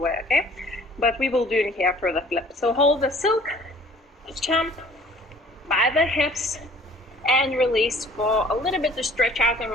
okay? But we will do it here for the flip. So hold the silk, jump by the hips, and release for a little bit to stretch out and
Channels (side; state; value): both; normal; correlation 0.52